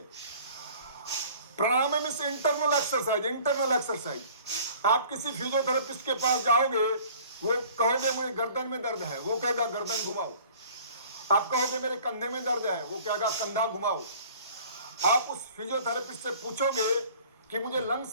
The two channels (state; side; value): inverted; both; correlation -0.50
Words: प्राणायाम में से इंटरनल एक्सरसाइज। आप किसी फिजियोथेरेपिस्ट के पास जाओगे, वो कहोगे मुझे गर्दन में दर्द है, वो कहेगा गर्दन घुमाओ। आप कहोगे मेरे कंधे में दर्द है, वो कहेगा कंधा घुमाओ। आप उस फिजियोथेरेपिस्ट से पूछोगे कि मुझे